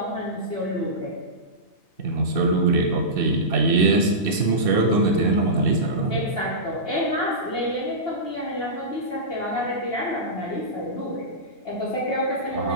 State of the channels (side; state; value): right; late; 2.6 ms